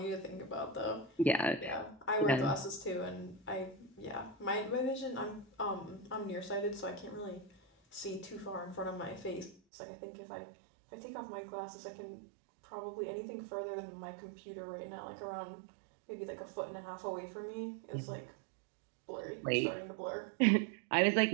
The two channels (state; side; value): drops out; left; at 9.6 s